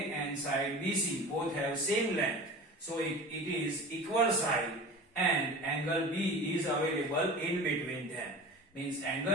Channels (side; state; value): both; normal; correlation 0.35